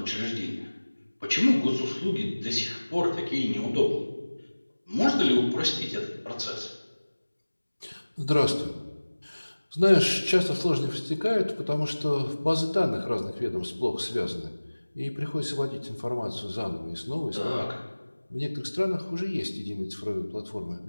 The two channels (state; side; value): inverted; both; correlation -1.00